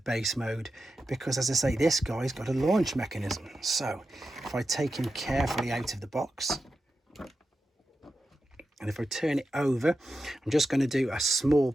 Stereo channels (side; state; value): both; normal; correlation 0.91